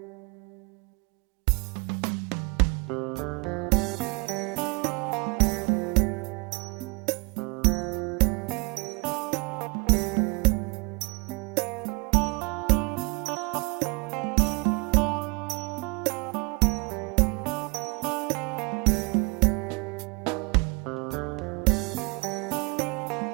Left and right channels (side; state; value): left; quieter; 29.3 dB